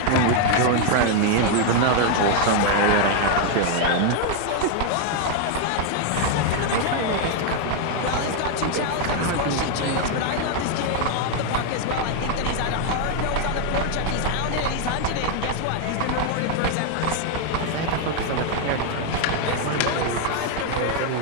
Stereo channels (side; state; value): both; different; correlation 0.00